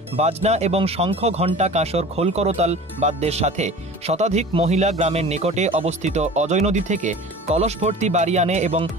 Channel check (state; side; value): normal; both; correlation 0.39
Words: বাজনা এবং শঙ্খ, ঘণ্টা, কাঁসর, খোল, করতাল বাদ্যের সাথে শতাধিক মহিলা গ্রামের নিকটে অবস্থিত অজয় নদী থেকে কলস ভর্তি বাড়ি আনে এবং